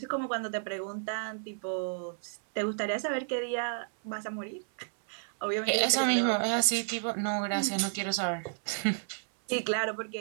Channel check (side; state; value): left; silent; 57 dB below the other